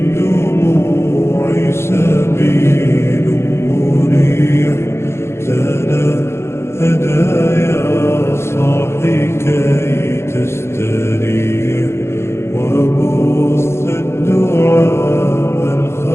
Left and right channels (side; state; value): right; late; 0.12 ms